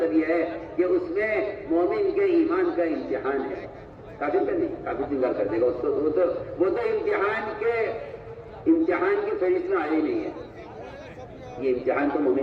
یہ ہے کہ اس میں مومن کے ایمان کا امتحان ہے. کافر کا نہیں, کافر انکار کر دے گا اس کو. وہ تو امتحان کی فہرست میں آیا ہی نہیں ہے. یہ امتحان تو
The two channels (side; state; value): both; identical; correlation 1.00